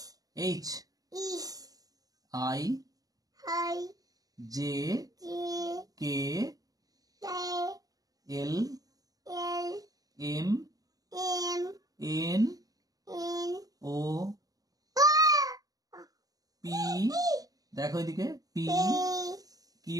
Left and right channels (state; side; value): late; left; 0.18 ms